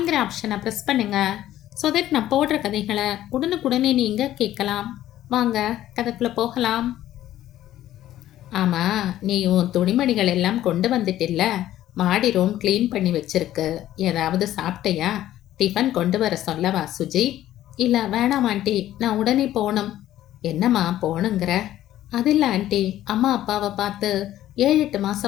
ஆப்ஷனை ப்ரெஸ் பண்ணுங்க. ஸோ தட் நான் போடுற கதைகளை உடனுக்குடனே நீங்கள் கேட்கலாம். வாங்க கதைக்குள்ளே போகலாம். ஆமாம், நீ உன் துணிமணிகள் எல்லாம் கொண்டு வந்துட்டில்ல, மாடி ரூம் க்ளீன் பண்ணி வச்சிருக்கு. ஏதாவது சாப்பிட்டையா? டிஃபன் கொண்டு வர சொல்லவா சுஜி? இல்லை வேணாம் ஆண்டி, நான் உடனே போகணும். என்னம்மா போகணுங்கிற? அது இல்லை ஆண்டி, அம்மா அப்பாவை பார்த்து 7-8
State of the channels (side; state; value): right; quieter; 13.2 dB